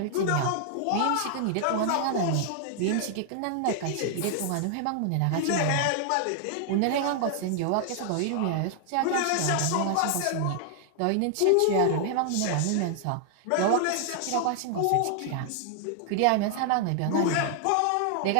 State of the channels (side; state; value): both; different; correlation 0.00